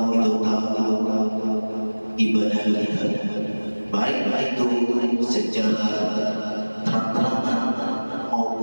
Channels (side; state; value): both; inverted; correlation -1.00